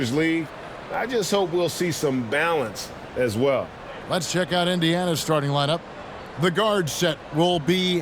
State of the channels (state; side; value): identical; both; correlation 1.00